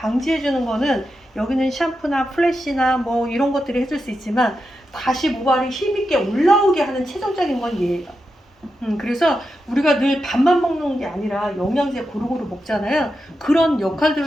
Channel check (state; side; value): normal; both; correlation 0.88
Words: 주는 거는 여기는 샴푸나 플래시나 뭐 이런 것들이 해줄 수 있지만 다시 모발이 힘있게 올라오게 하는 최종적인 건 얘예요. 그래서 우리가 늘 밥만 먹는 게 아니라 영양제 고루고루 먹잖아요. 그런